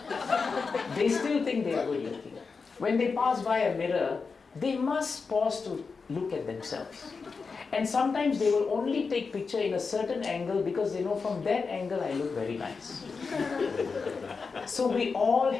they still think they are good looking. When they pass by a mirror, they must pause to look at themselves. And sometimes they will only take picture in a certain angle because they know from that angle I look very nice. So we all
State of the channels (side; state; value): right; quieter; 4.8 dB